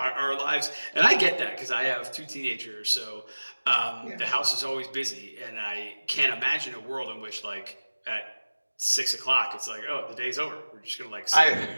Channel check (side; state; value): both; inverted; correlation -1.00